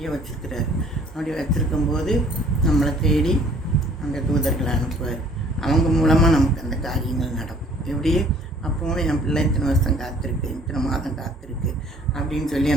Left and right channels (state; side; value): normal; both; correlation 0.56